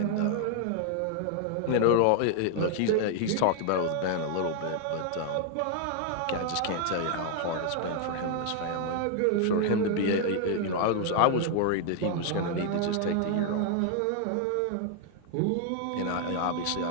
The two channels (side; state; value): both; different; correlation 0.00